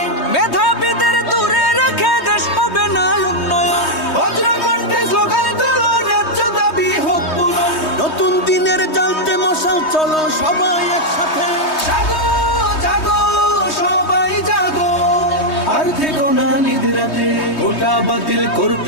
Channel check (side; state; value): right; late; 3.2 ms